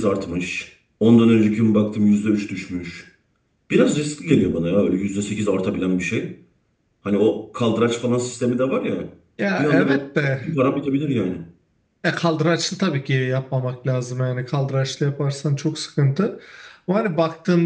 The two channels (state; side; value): identical; both; correlation 1.00